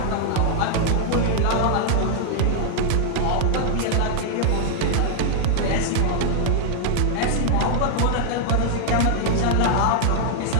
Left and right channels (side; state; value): both; different; correlation -0.01